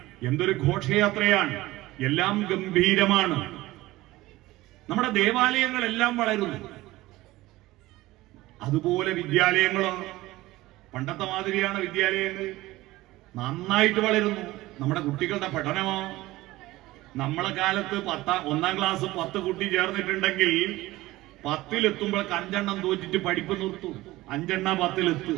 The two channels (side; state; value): left; quieter; 18.2 dB